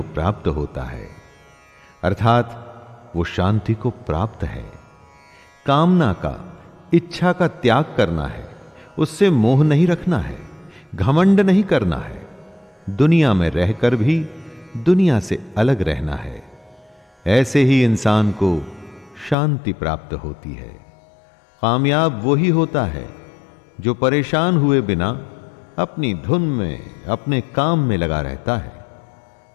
प्राप्त होता है। अर्थात वो शांति को प्राप्त है। कामना का, इच्छा का त्याग करना है, उससे मोह नहीं रखना है, घमंड नहीं करना है, दुनिया में रहकर भी दुनिया से अलग रहना है। ऐसे ही इंसान को शांति प्राप्त होती है। कामयाब वही होता है जो परेशान हुए बिना अपनी धुन में, अपने काम में लगा रहता है।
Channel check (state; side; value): drops out; right; at 19.4 s